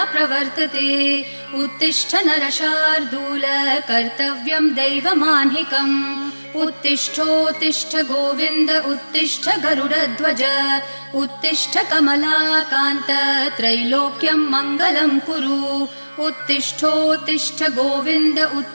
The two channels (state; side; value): inverted; both; correlation -1.00